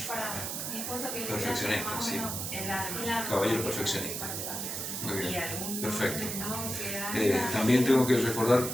Perfeccionista, sí. Caballero perfeccionista. Muy bien, perfecto. También tengo que recordar,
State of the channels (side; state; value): right; noise; hiss, 4 dB below the sound